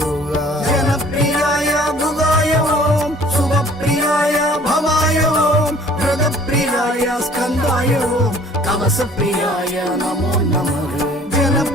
ஜனப்பிரியாய புகாய ஓம் சுபப்பிரியாய பவாய ஓம் பிரதப்பிரியாய ஸ்கந்தாய ஓம் கவசப்பிரியாய நமோ நமः.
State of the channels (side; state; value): both; normal; correlation 0.53